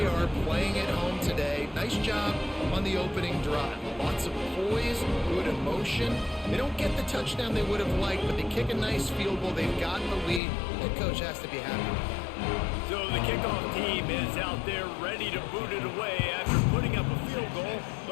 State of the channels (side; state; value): right; drops out; at 10.4 s